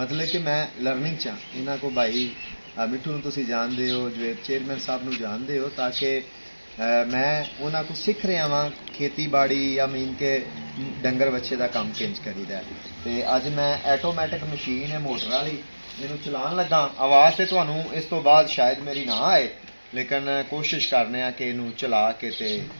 कि मैं लर्निंग चा इन्हों को भाई मिठू तुसी जानते हो जो चेयरमैन साहब नूं जानते हो ताकि मैं उन्होंने को सीख रहा वहाँ खेती बाड़ी या मीन के डंगर बच्चे का काम किंज करीदा तो अज मैं ऐटोमैटिक मशीन है मोटर वाली मैनू चलान लगा आवाज़ तो तुहानू इस तो बाद शायद मेरी ना आए लेकिन कोशिश करने कि इनू चला के ते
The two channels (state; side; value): inverted; both; correlation -1.00